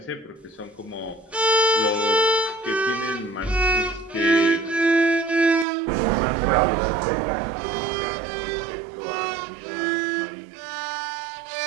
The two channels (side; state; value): left; drops out; at 5.7 s